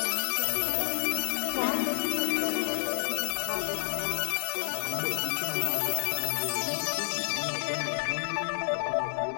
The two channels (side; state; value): right; silent; digital silence